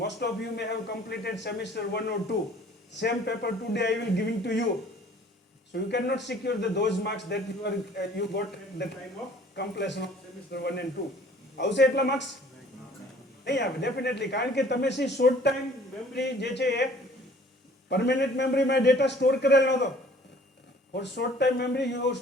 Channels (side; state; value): both; normal; correlation 0.53